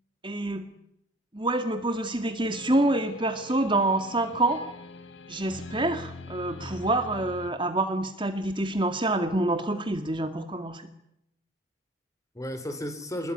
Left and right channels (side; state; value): both; normal; correlation 0.46